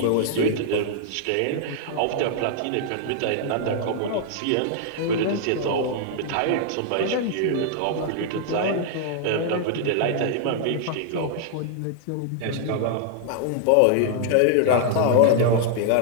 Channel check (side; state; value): both; different; correlation -0.01